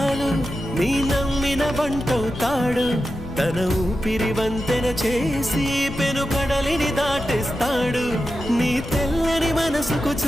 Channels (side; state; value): left; noise; rumble, 12 dB below the sound